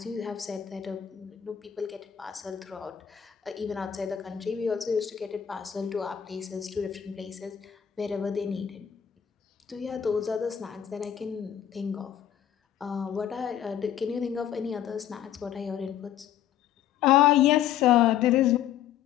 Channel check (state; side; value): quieter; right; 10.0 dB